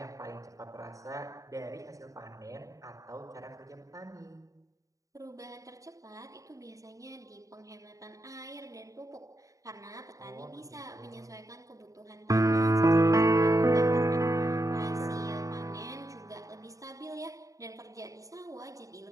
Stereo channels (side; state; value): left; late; 0.16 ms